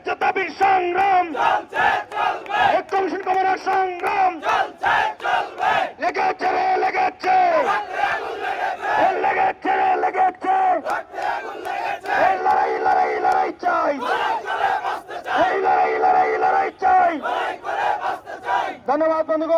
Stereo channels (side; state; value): both; identical; correlation 1.00